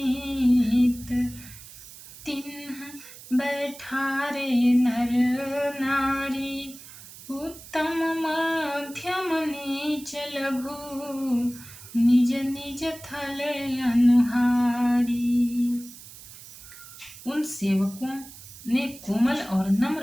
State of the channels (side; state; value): right; noise; hiss, 17 dB below the sound